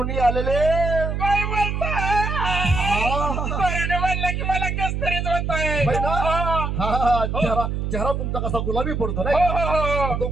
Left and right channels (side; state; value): right; noise; hum, 2 dB below the sound